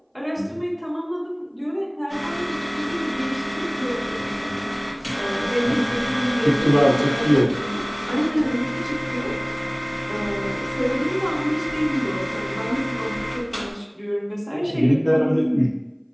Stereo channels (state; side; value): identical; both; correlation 1.00